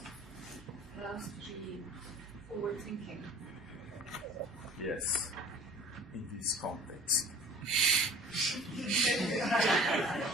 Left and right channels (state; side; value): normal; both; correlation 0.48